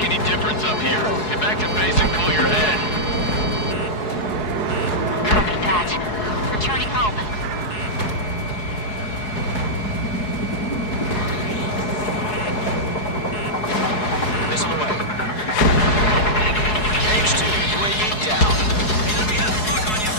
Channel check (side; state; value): right; late; 4.7 ms